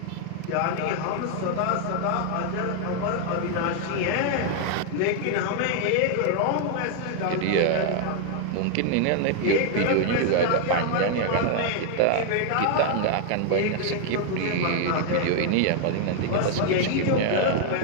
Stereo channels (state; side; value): different; both; correlation 0.00